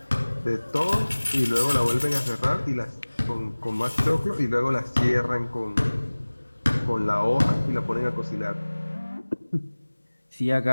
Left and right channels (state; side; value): inverted; both; correlation -1.00